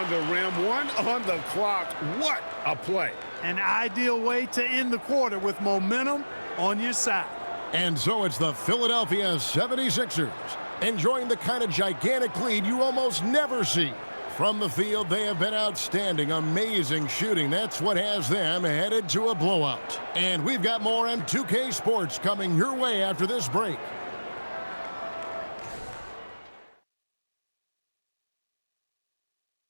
the rim, one on the clock. What a play. An ideal way to end the quarter with momentum on your side. And so it's the Philadelphia 76ers enjoying the kind of gigantic lead you almost never see. From the field, they have been outstanding, amazing shooting. That's what has them headed to a blowout. And we've got more M2K Sports coming your way after this break.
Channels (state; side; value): inverted; both; correlation -1.00